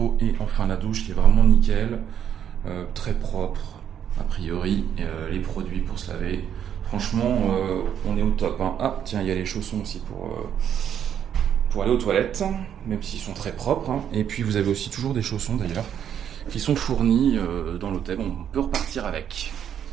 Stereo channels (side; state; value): left; quieter; 9.2 dB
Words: et enfin la douche qui est vraiment nickel, très propre a priori. Les produits pour se laver. Franchement, on est au top. Hein. Ah, tiens, il y a les chaussons aussi pour aller aux toilettes, même s'ils sont très propres. Hein. Et puis, vous avez aussi toujours des chaussons, d'ailleurs, qui sont fournis dans l'hôtel. On peut repartir avec.